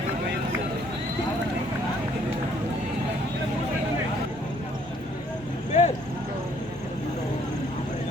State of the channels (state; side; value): normal; both; correlation 0.64